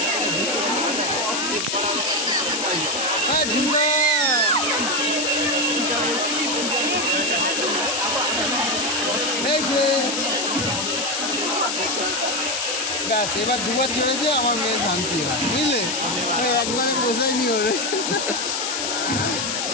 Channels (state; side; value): noise; left; hiss, 1 dB below the sound